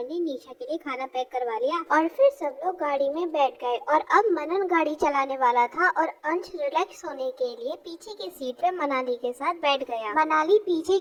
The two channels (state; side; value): identical; both; correlation 1.00